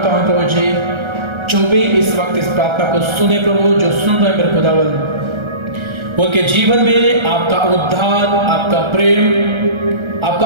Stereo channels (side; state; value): left; late; 1.3 ms